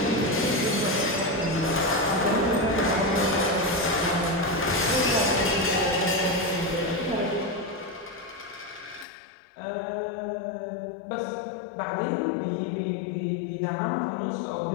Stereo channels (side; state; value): right; drops out; at 9.1 s